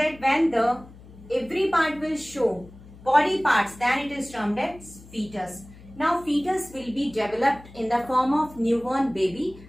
when the every part will show body parts, then it is termed as fetus. Now fetus will be developed in the form of newborn baby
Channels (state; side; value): noise; left; hum, 20 dB below the sound